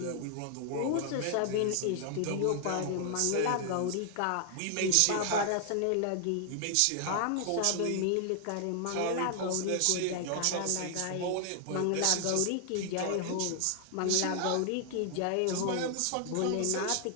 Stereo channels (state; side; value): different; both; correlation 0.00